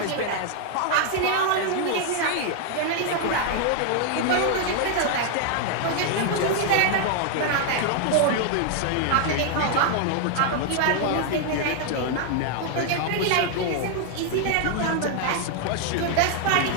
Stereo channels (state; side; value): different; both; correlation 0.00